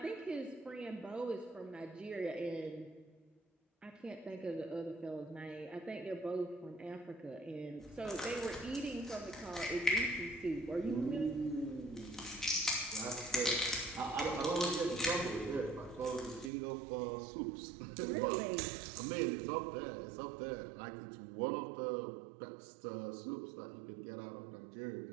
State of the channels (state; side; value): drops out; left; at 16.5 s